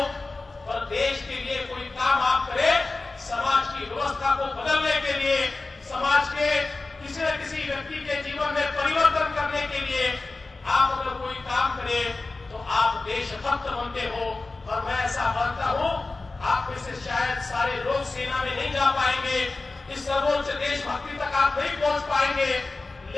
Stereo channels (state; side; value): quieter; right; 3.5 dB